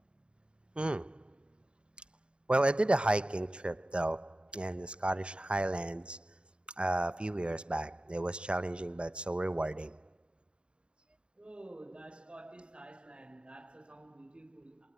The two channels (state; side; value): late; left; 0.053 ms